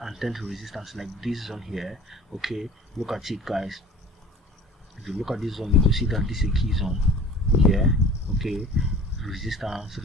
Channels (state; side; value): normal; both; correlation 0.43